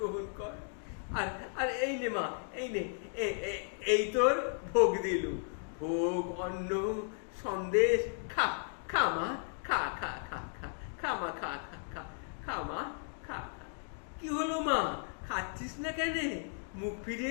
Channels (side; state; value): right; silent; digital silence